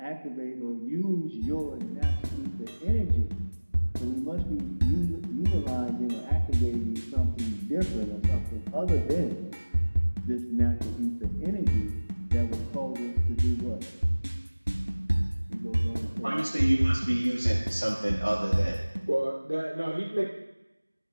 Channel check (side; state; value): both; inverted; correlation -1.00